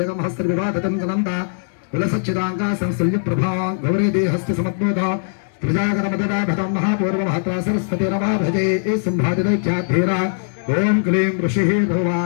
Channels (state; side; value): silent; right; digital silence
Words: హస్త్రవివాదతం గనంద విలసచ్చిదాంగా సంసల్య ప్రభా గౌరీ దేహస్య సమద్బోధ ప్రజాగణమదదాభతం మహాపూర్వమహత్రా సరస్వతి నమా భజే ఏ సంభాజనైత్యాధీర ఓం క్లీం